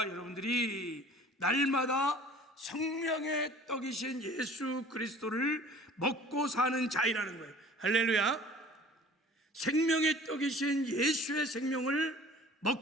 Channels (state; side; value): normal; both; correlation 0.48